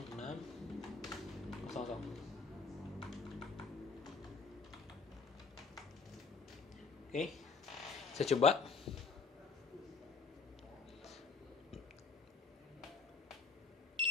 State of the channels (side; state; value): right; quieter; 5.0 dB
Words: Oke, saya coba.